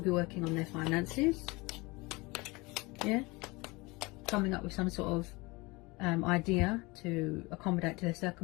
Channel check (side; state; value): right; quieter; 24.5 dB